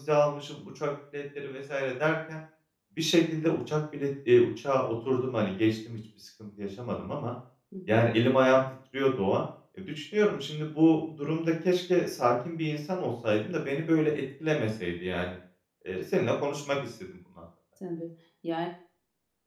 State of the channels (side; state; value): both; identical; correlation 1.00